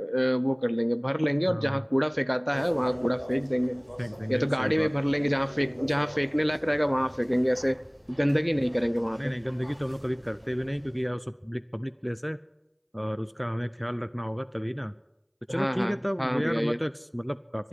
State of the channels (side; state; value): both; identical; correlation 1.00